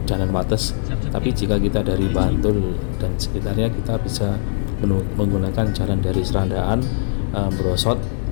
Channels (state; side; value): silent; right; digital silence